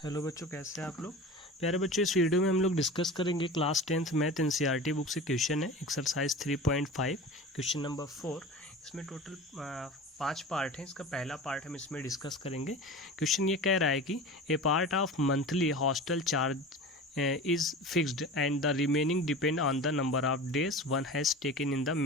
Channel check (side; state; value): both; normal; correlation 0.33